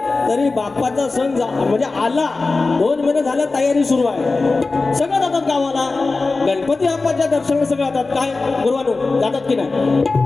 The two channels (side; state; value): right; quieter; 3.7 dB